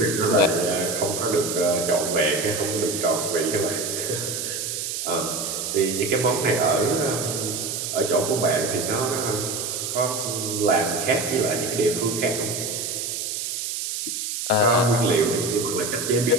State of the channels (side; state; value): right; noise; hiss, 3 dB below the sound